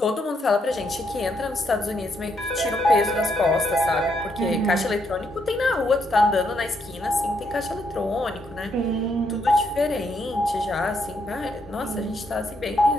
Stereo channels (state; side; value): normal; both; correlation 0.76